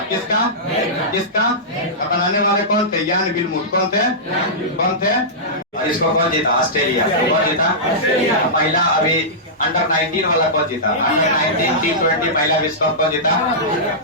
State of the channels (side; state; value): both; normal; correlation -0.15